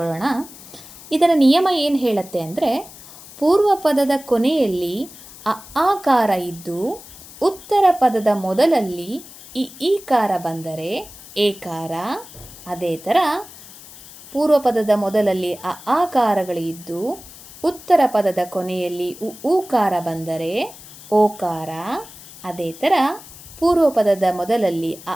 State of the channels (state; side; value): noise; left; hiss, 18 dB below the sound